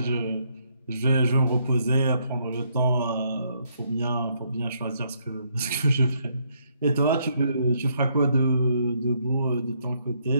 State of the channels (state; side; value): inverted; both; correlation -0.73